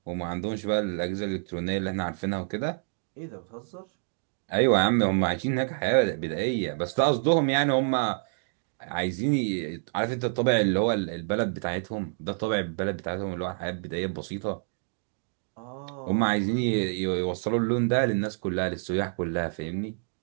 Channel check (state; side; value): silent; left; digital silence